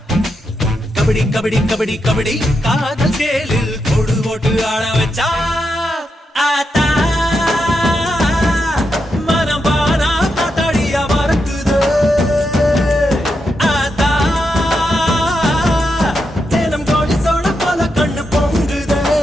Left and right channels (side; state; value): both; normal; correlation 0.85